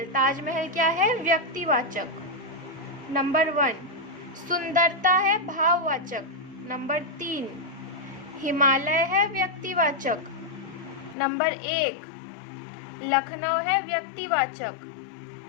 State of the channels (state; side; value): drops out; right; at 11.2 s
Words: ताजमहल क्या है? व्यक्तिवाचक। नंबर 1। सुंदरता है भाववाचक। नंबर 3। हिमालय है व्यक्तिवाचक। नंबर 1। लखनऊ है व्यक्तिवाचक।